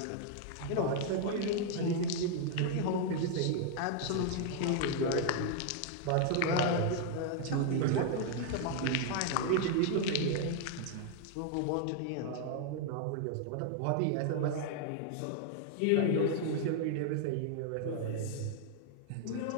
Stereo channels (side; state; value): both; different; correlation 0.00